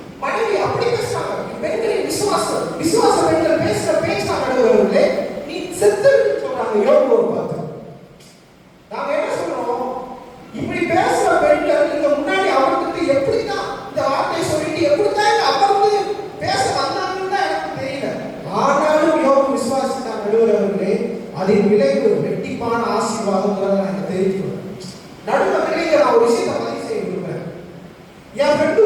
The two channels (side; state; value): both; identical; correlation 1.00